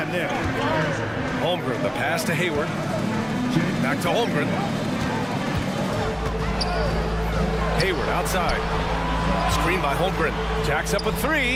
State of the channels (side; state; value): both; identical; correlation 1.00